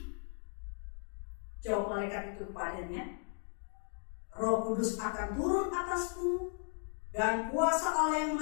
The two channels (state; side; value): silent; right; 54 dB below the other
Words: Jawab malaikat itu kepadanya, Roh Kudus akan turun atasmu, dan kuasa Allah yang